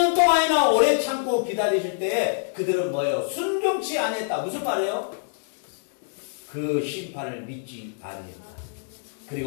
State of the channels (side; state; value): right; silent; digital silence